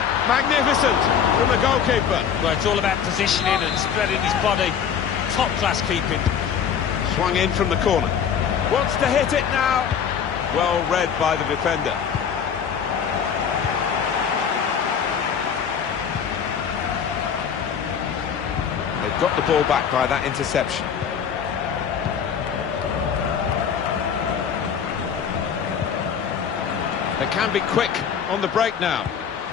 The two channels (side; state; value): right; quieter; 7.6 dB